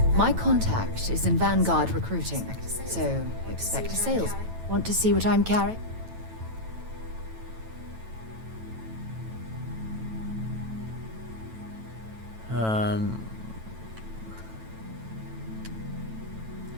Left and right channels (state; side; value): late; left; 9.1 ms